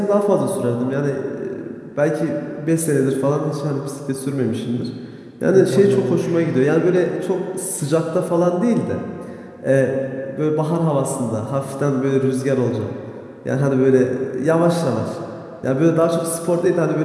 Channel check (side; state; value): both; identical; correlation 1.00